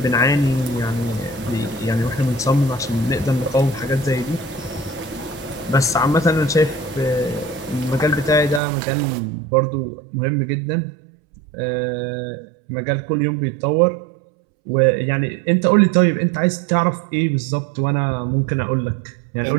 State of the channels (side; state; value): left; drops out; at 8.6 s